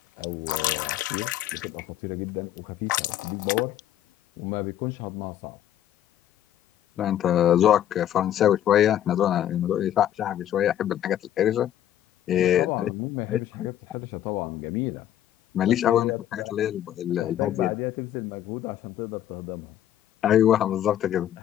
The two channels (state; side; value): quieter; right; 11.4 dB